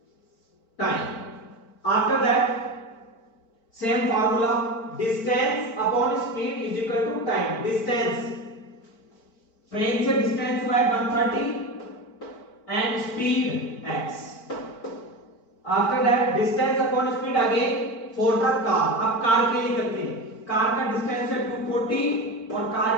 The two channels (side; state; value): right; late; 4.5 ms